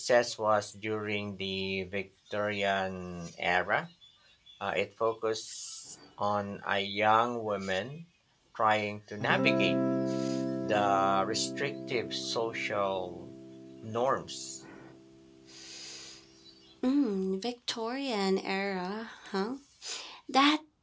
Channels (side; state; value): both; identical; correlation 1.00